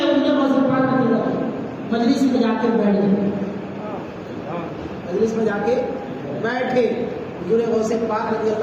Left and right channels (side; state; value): both; identical; correlation 1.00